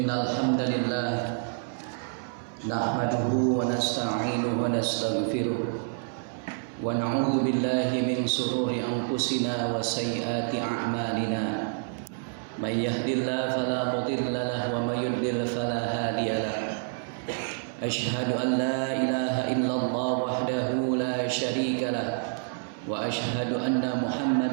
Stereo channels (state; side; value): silent; left; 59 dB below the other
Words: hamdalillah nahmaduhu wa nasta'inuhu wa nastaghfiruh wa na'udzu billahi min shururi anfusina wa sayyiati a'malina. May yahdihillahu fala mudilla lahu wa may yudlil fala hadiya lahu. Asyhadu an la ilaha illallah wahdahu la syarika lahu wa asyhadu anna